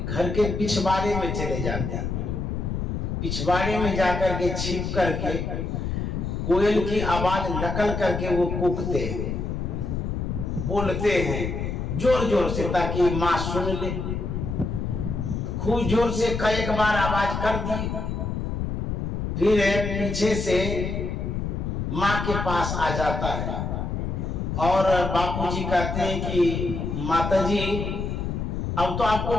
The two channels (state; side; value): noise; left; rumble, 2 dB below the sound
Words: के पिछवाड़े में चले जाते हैं, पिछवाड़े में जाकर के छिप करके कोयल की आवाज नकल करके वो कूकते हैं, बोलते हैं जोर जोर से ताकि माँ सुन ले। खूब जोर से कई बार आवाज कर दी, फिर पीछे से माँ के पास आ जाता है और बापूजी कहते हैं कि माताजी, अब तो आपको